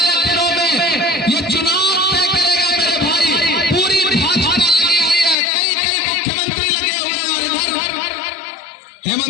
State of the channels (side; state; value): right; drops out; at 5.4 s